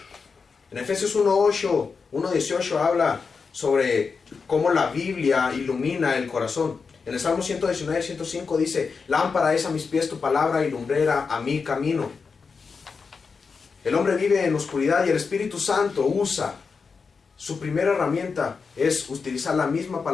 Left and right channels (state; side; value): quieter; right; 5.1 dB